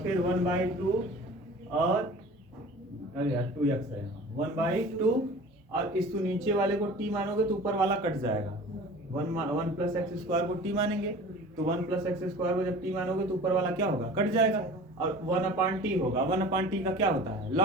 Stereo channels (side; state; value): both; normal; correlation 0.41